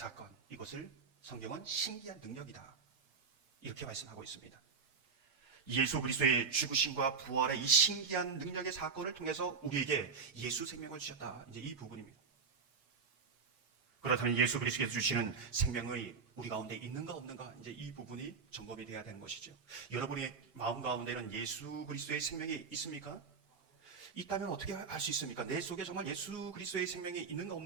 이것을 성경은 신기한 능력이다, 이렇게 말씀하고 있습니다. 예수 그리스도의 죽으심과 부활의 이 신기한 능력의 사건을 통해서 우리에게 예수 생명을 주셨다, 이제 이 부분입니다. 그렇다면 예수 그리스도께서 주시는 생명이 우리 가운데 있는가 없는가, 이제 이 부분이 점검이 되어야 되는 것이죠. 여러분의 마음 가운데는 예수 그리스도의 생명이 있습니까? 있다면 어떻게 알 수 있습니까? 내 속에 정말 예수 그리스도의 생명이 있는가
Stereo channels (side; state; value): left; quieter; 5.4 dB